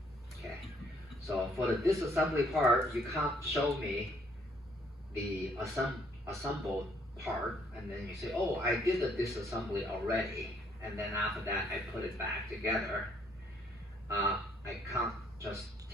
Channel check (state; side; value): normal; both; correlation 0.66